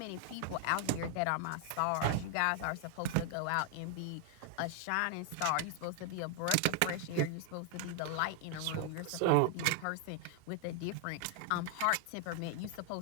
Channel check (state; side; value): different; both; correlation 0.00